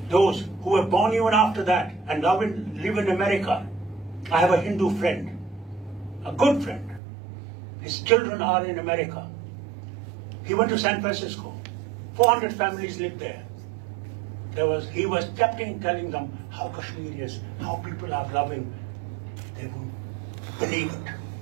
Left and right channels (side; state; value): left; drops out; at 7.0 s